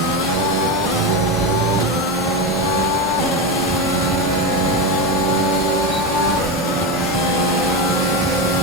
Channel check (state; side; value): normal; both; correlation 0.15